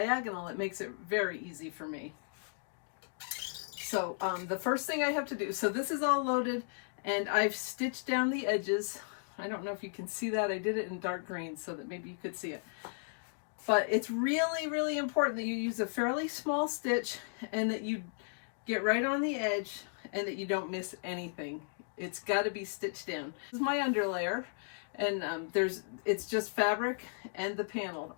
it makes it very easy for me. So the first thing I have to do, so this is all loaded and I've stitched down the edges. I don't know if you can see that. I did it in dark green so that maybe you could see it. But it's really, really important that you use a fairly small stitch and that you get right on the edge and that you don't miss anything. It's got to be stitched down. This is my underlayer, and it's just fabric and the panel.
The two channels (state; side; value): silent; right; digital silence